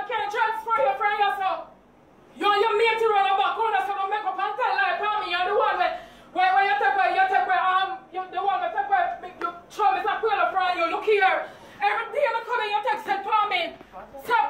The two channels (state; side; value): identical; both; correlation 1.00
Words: can transfer you from yourself. You and your mate to run a back corner so don't make up and tell lie for me. You're the one where you take away, you're the one that take away, you show me some quail from you. Look here. Every day I come in, you text it for me. Stop